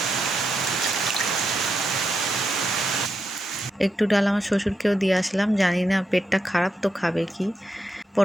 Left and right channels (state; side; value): normal; both; correlation 0.84